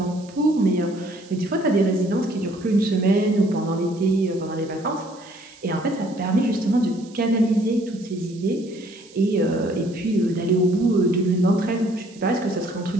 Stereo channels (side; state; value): right; noise; hiss, 24 dB below the sound